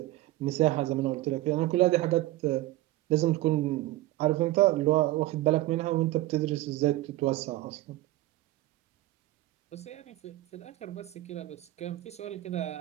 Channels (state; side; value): quieter; left; 16.8 dB